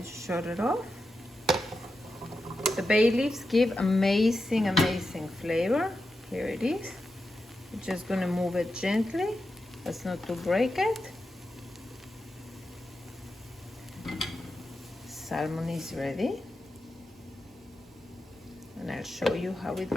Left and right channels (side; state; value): both; normal; correlation 0.89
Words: just shut it off. The bay leaves give amazing, amazing flavor. Here it is. We're just going to move it gently. That's not to break it. Salmon is ready, and I'll show you how it